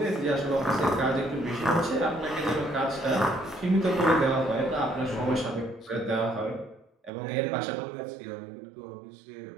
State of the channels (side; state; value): left; drops out; at 7.1 s